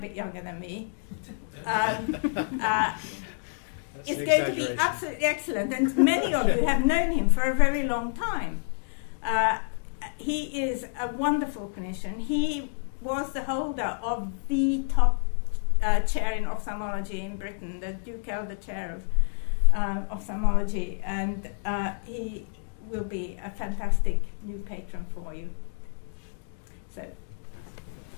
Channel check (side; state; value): right; silent; digital silence